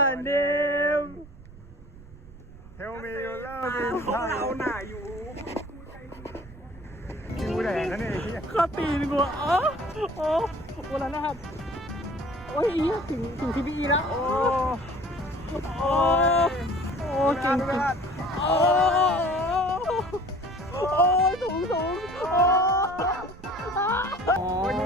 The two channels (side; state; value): right; noise; rumble, 19 dB below the sound